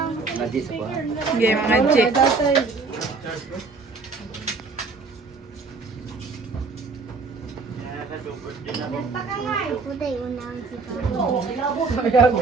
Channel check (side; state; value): left; quieter; 4.3 dB